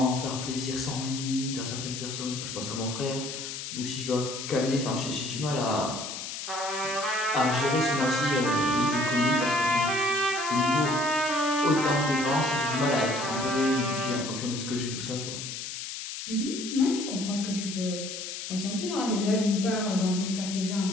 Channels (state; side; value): noise; left; hiss, 7 dB below the sound